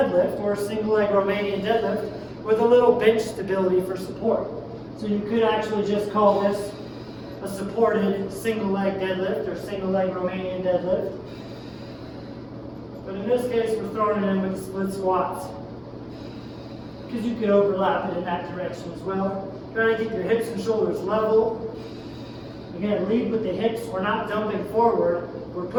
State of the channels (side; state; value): both; identical; correlation 1.00